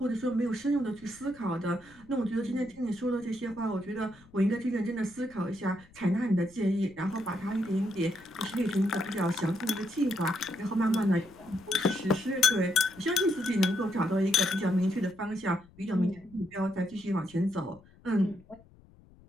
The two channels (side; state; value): left; noise; rumble, 26 dB below the sound